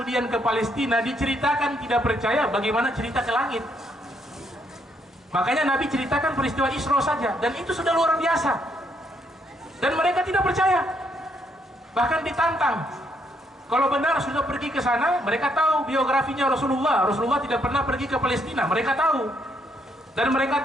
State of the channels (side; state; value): both; normal; correlation 0.74